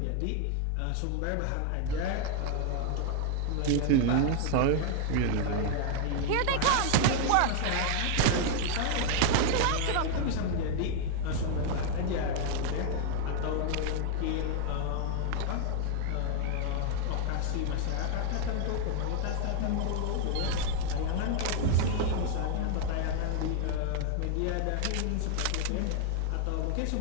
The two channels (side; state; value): both; different; correlation 0.00